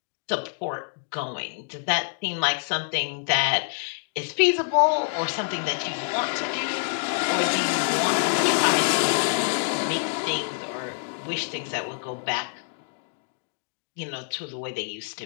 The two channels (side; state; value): right; silent; 61 dB below the other